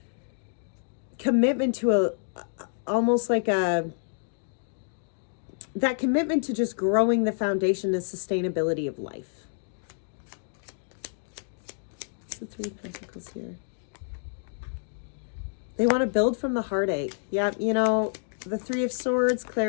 commitment to almost like that commitment to just growing the foundation and sustainability of life. What's the Three of Pentacles here? They want to build from the heartache. Yeah, you know, the Three of Swords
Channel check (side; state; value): right; silent; digital silence